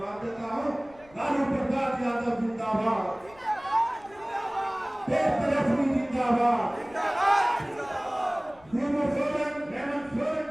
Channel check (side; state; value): left; noise; rumble, 26 dB below the sound